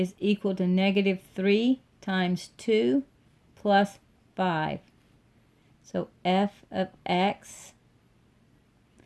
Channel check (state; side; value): identical; both; correlation 1.00